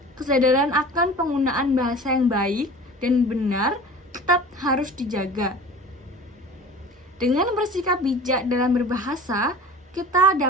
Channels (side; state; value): both; normal; correlation 0.40